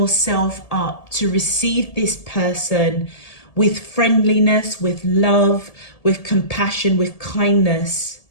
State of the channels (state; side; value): late; right; 1.7 ms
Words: up to receive this person with friendliness, with love, with compassion, with kindness,